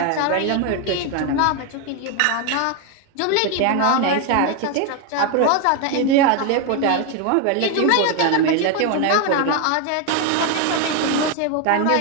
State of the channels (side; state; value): both; different; correlation 0.01